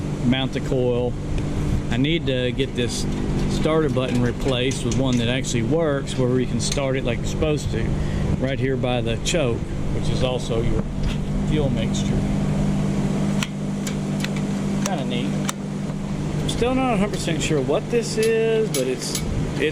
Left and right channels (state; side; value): identical; both; correlation 1.00